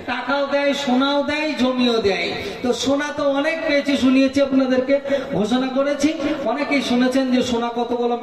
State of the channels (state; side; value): identical; both; correlation 1.00